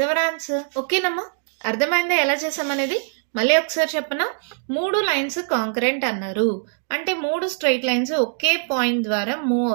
our answer. ఓకేనమ్మా? అర్థమైందా ఎలా చేసామనేది? మళ్ళీ ఒకసారి చెప్పనా? 3 లైన్స్ కాంకరెంట్ అన్నారు అంటే 3 స్ట్రైట్ లైన్స్ ఒకే పాయింట్ ద్వారా మూవ్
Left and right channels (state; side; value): silent; left; digital silence